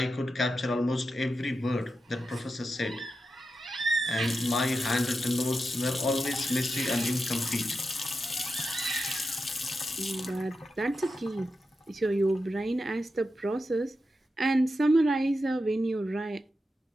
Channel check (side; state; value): both; normal; correlation 0.89